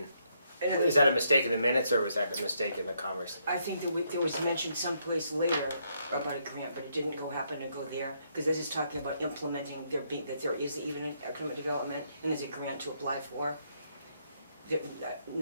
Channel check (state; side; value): inverted; both; correlation -0.74